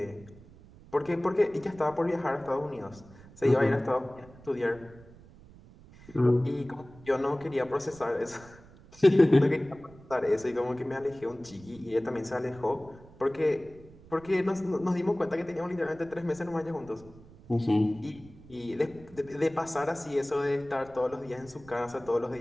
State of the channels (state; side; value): noise; right; rumble, 22 dB below the sound